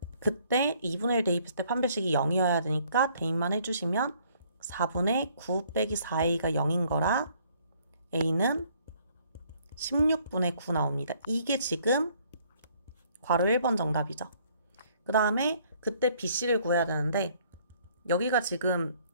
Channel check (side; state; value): both; inverted; correlation -0.63